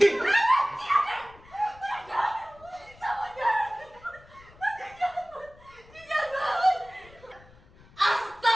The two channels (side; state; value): left; noise; rumble, 25 dB below the sound